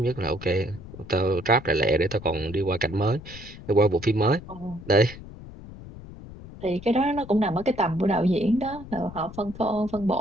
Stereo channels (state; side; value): noise; left; rumble, 15 dB below the sound